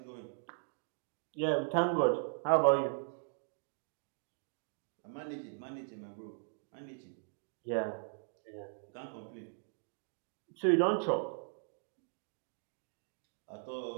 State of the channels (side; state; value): left; silent; digital silence